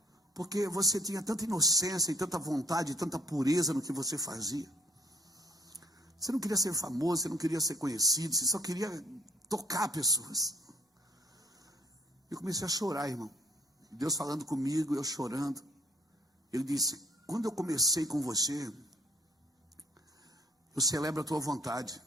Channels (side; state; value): both; normal; correlation 0.61